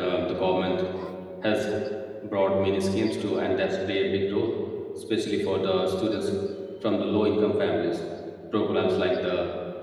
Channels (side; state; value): both; identical; correlation 1.00